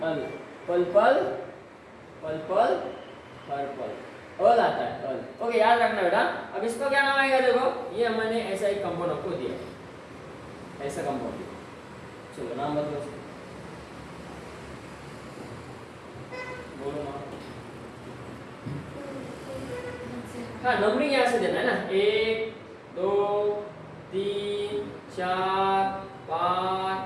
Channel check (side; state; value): both; identical; correlation 1.00